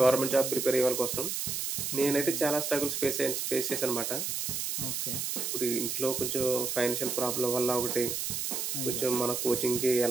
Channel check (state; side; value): noise; right; hiss, 2 dB below the sound